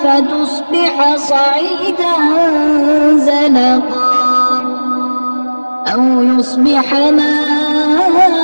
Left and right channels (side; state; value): both; inverted; correlation -1.00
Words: فتصبح صعيدا زلقا أو يصبح ماؤها